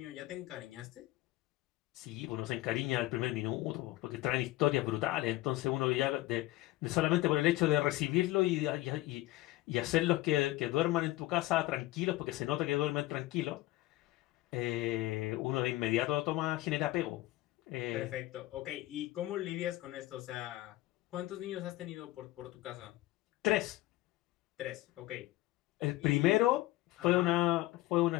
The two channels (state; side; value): quieter; right; 17.7 dB